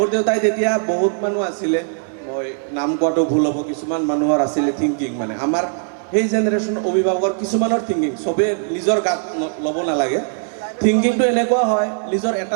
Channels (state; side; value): silent; left; digital silence